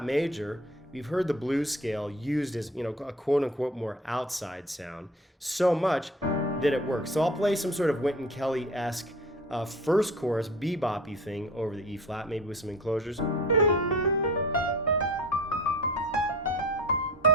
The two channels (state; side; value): normal; both; correlation 0.40